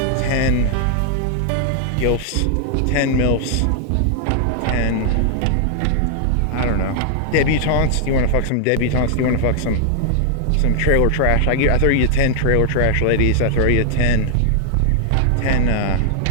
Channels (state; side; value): different; both; correlation -0.01